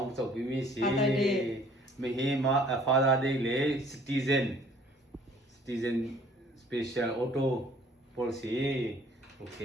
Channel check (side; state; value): both; normal; correlation 0.56